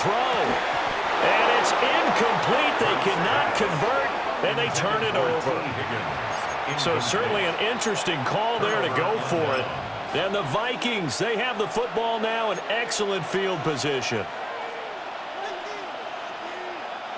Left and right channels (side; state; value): both; identical; correlation 1.00